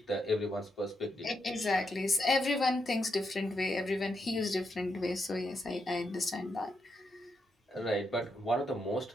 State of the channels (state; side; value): normal; both; correlation 0.82